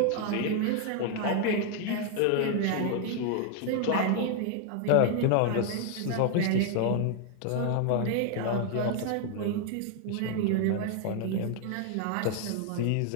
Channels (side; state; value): both; different; correlation 0.00